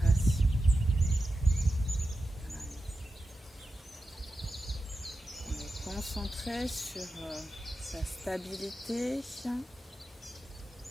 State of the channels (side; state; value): both; normal; correlation 0.92